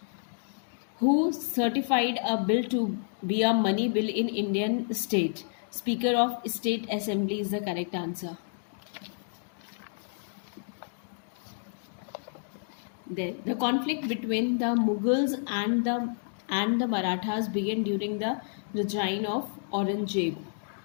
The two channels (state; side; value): silent; right; digital silence